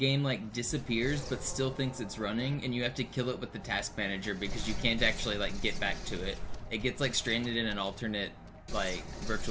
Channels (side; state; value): both; identical; correlation 1.00